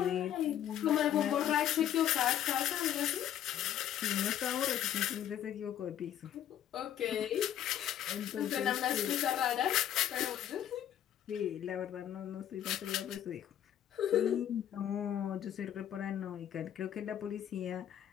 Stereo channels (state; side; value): quieter; right; 10.7 dB